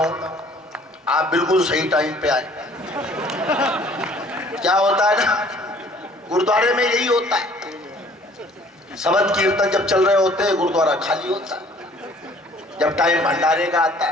आप बिल्कुल सही टाइम पे आए। क्या होता है ना, गुरुद्वारे में यही होता है, शबद कीर्तन जब चल रहे होते हैं गुरुद्वारा खाली होता है, जब टाइम भंडारे का आता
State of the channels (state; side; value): normal; both; correlation 0.55